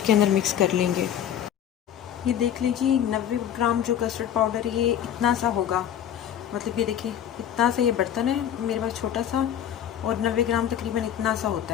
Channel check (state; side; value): quieter; right; 10.0 dB